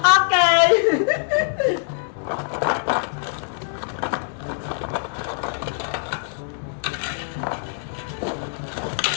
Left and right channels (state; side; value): silent; right; digital silence